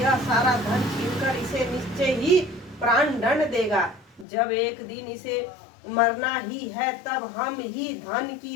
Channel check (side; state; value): right; drops out; at 4.2 s